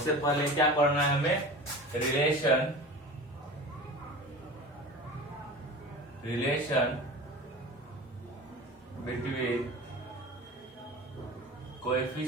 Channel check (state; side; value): normal; both; correlation 0.35